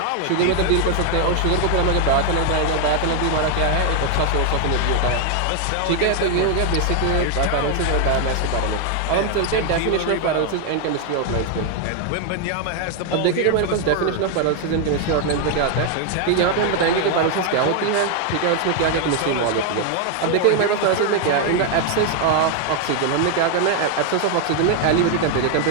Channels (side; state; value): both; different; correlation 0.01